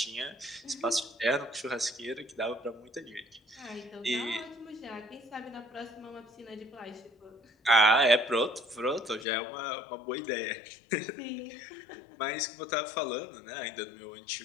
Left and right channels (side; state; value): right; drops out; at 9.2 s